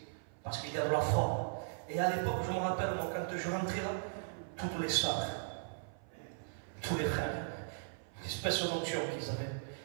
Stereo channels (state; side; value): silent; left; 53 dB below the other